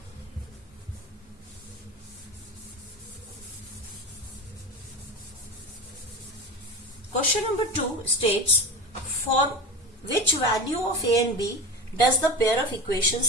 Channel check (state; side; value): normal; both; correlation 0.28